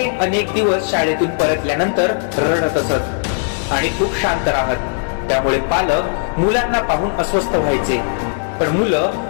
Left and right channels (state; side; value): silent; right; digital silence